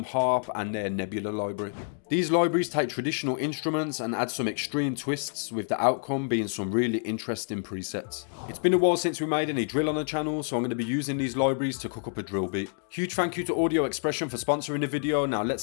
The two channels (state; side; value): silent; right; digital silence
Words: harp and their Nebula library. These libraries take traditional instruments and add some extreme twists, with the outcome being some really interesting presets. It's been a while since we made any drill on the channel, so I'm going to be using these libraries to cook up a drill beat. Huge thank you to Audio Expression for sponsoring the video. Now